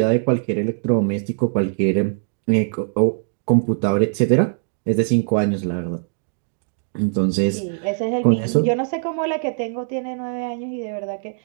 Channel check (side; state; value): left; silent; digital silence